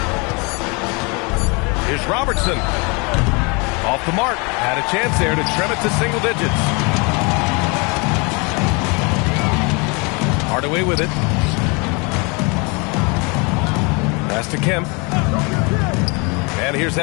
Here's Robertson. Off the mark. Had a chance there to trim it to single digits. Hardaway with it. Pass to Kemp. And here's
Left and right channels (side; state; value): right; quieter; 30.3 dB